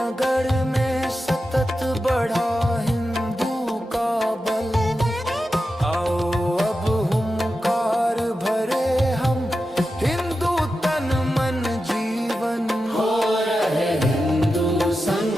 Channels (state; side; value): normal; both; correlation 0.91